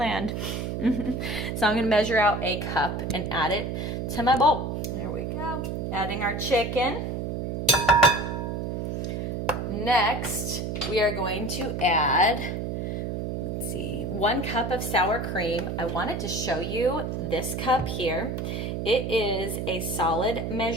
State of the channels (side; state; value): right; noise; hum, 3 dB below the sound